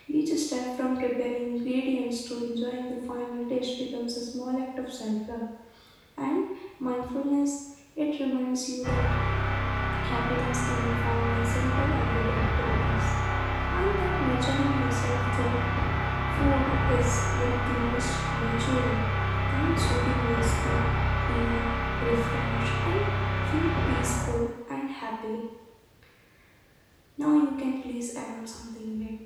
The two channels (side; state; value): both; identical; correlation 1.00